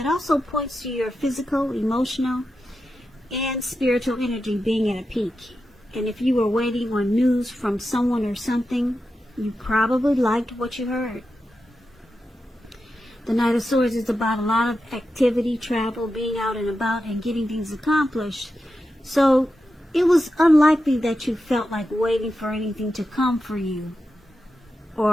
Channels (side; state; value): both; normal; correlation 0.90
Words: also points to your physical, emotional, and spiritual energy being at a peak. And if you were waiting on news from someone or something, you probably liked what you heard. The Knight of Swords is about a lot of activity, travel, being out and about, and getting things accomplished. So it was unlikely that you felt like waiting for anything to come for you,